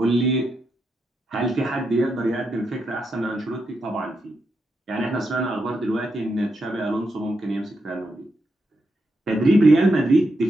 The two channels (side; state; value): both; normal; correlation 0.83